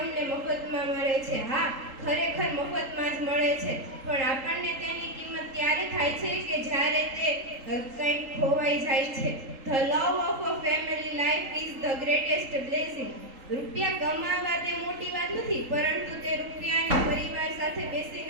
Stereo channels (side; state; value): left; late; 3.8 ms